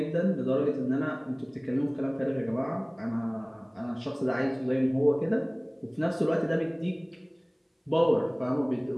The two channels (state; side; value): identical; both; correlation 1.00